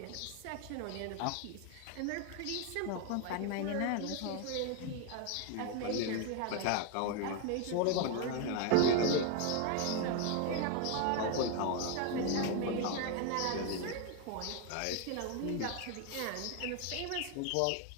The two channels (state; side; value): different; both; correlation 0.01